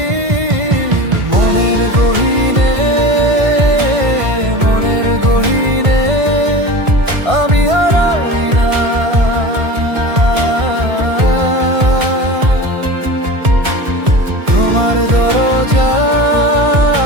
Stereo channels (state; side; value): late; left; 1.5 ms